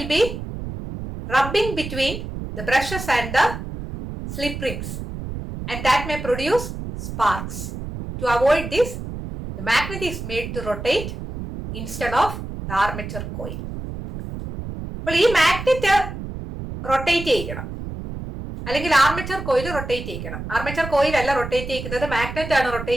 be rubbing between the brushes and the slip rings, and that may produce sparks. To avoid this, the magnet is made to rotate instead of the armature coil. അപ്പോൾ ഈ മാഗ്നറ്റ് റൊട്ടേറ്റ് ചെയ്യണം, അല്ലെങ്കിൽ ആർമേച്ചർ കോയിൽ റൊട്ടേറ്റ് ചെയ്യിക്കണം. ആർമേച്ചർ കോയിൽ അല്ല റൊട്ടേറ്റ് ചെയ്യിക്കുന്നത്, മാഗ്നറ്റ് ആണ്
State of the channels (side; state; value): right; noise; rumble, 8 dB below the sound